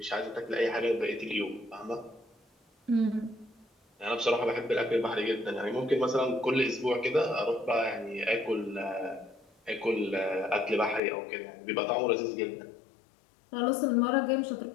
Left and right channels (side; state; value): right; drops out; at 11.0 s